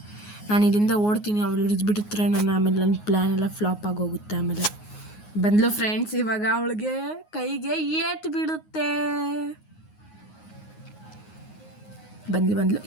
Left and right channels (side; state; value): right; late; 9.5 ms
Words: ನಾನು ಇಲ್ಲಿಂದ ಓಡ್ತೀನಿ, ಅವಳು ಹಿಡಿದ್ಬಿಟ್ಟಿರ್ತಾರೆ ಆಮೇಲೆ ನನ್ನ ಪ್ಲ್ಯಾನ್ ಎಲ್ಲ ಫ್ಲಾಪ್ ಆಗೋಗುತ್ತೆ. ಆಮೇಲೆ ಬಂದ್ಲು ಫ್ರೆಂಡ್ಸ್, ಇವಾಗ ಅವಳಿಗೆ ಕೈಗೆ ಏಟ್ ಬಿಡುತ್ತೆ. ಬಂದ್ಲು.